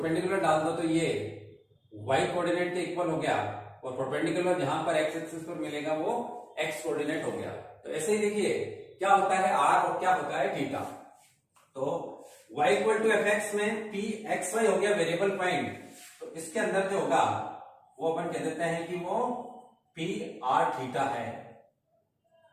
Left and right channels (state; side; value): identical; both; correlation 1.00